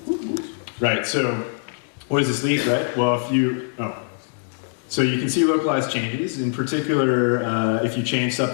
right, so what does this lead, right? Well, so you can see localized changes. In particular, if you change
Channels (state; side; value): silent; right; digital silence